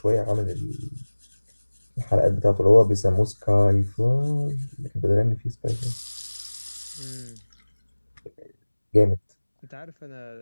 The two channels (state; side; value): inverted; both; correlation -1.00